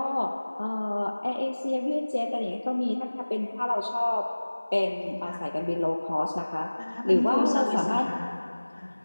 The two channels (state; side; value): inverted; both; correlation -1.00